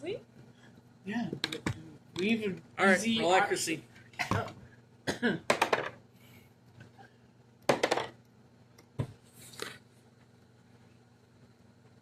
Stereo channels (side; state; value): both; identical; correlation 1.00